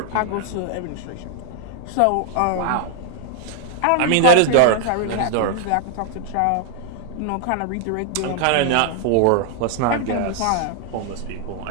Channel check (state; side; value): different; both; correlation 0.00